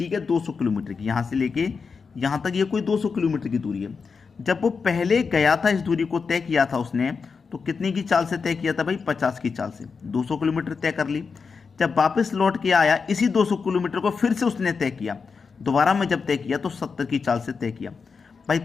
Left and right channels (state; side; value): quieter; right; 5.2 dB